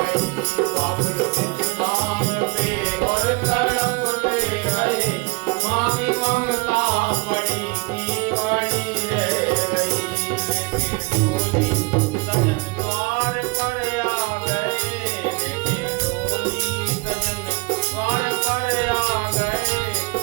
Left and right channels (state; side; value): quieter; left; 27.0 dB